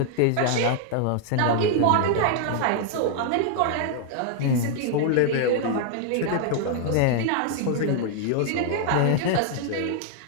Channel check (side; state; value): both; different; correlation 0.00